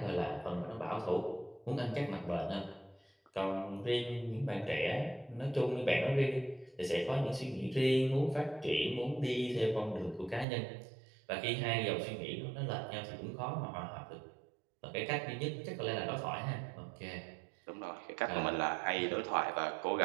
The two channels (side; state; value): left; drops out; at 10.5 s